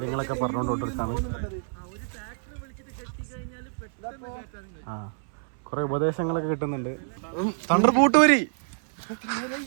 പറഞ്ഞുകൊണ്ടിരിക്കാണ്. ആ കൊറേ ഉപദേശങ്ങളൊക്കെ കിട്ടുന്നുണ്ട്. തണ്ടർ പൂട്ടൂരി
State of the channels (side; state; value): left; silent; 60 dB below the other